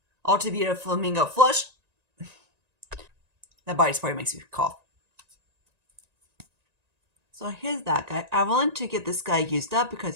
Ultra Beauty Flamingo Flush. That body spray makes you cough. So here's that guy. I wanted to get this guy used up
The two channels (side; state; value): left; late; 1.9 ms